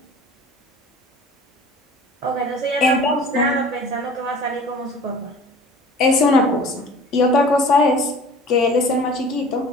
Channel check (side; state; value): both; normal; correlation 0.44